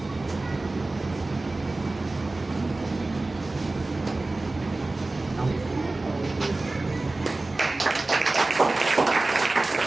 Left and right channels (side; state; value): left; quieter; 3.1 dB